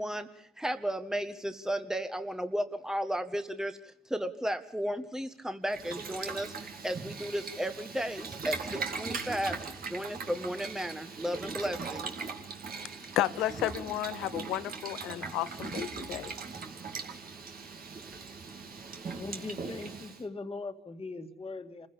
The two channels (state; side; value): normal; both; correlation 0.69